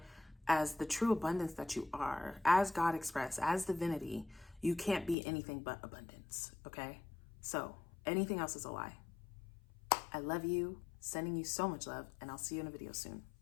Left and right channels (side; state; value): right; drops out; at 5.2 s